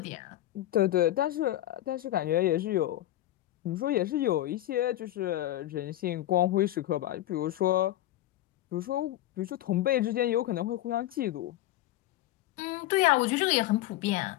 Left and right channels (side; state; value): right; quieter; 14.5 dB